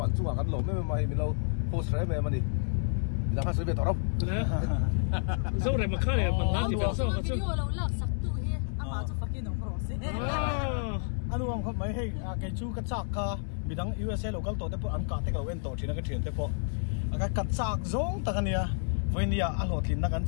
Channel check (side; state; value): right; silent; digital silence